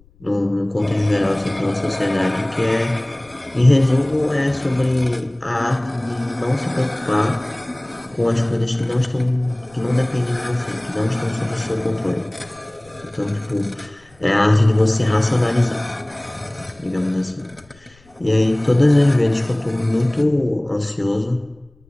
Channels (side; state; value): left; noise; rumble, 29 dB below the sound